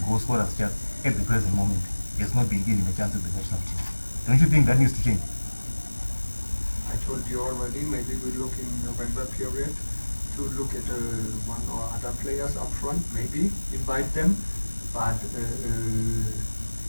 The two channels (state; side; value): inverted; both; correlation -1.00